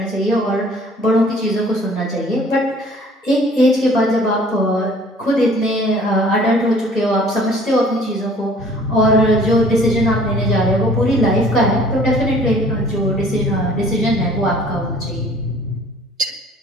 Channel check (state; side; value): normal; both; correlation 0.53